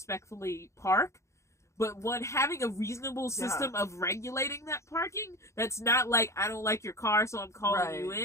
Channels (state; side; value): late; right; 0.14 ms